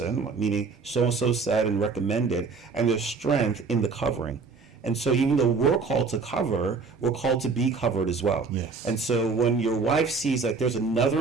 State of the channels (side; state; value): left; quieter; 4.7 dB